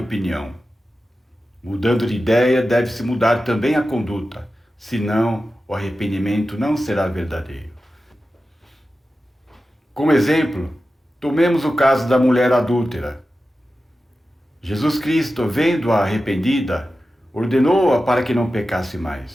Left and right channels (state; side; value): normal; both; correlation 0.93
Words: Mudando de ideia, deve-se mudar também a conduta, senão o arrependimento não será verdadeiro. Como exemplo, tomemos o caso da mulher adúltera. Jesus Cristo, vendo-a arrependida, ordenou-a para que não pecasse